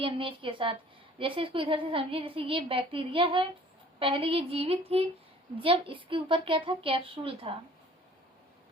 के साथ। जैसे इसको इधर से समझिए, जैसे ये बैक्टीरिया है, पहले ये जीवित थी, जब इसके ऊपर क्या था, कैप्सूल था।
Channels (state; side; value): normal; both; correlation 0.52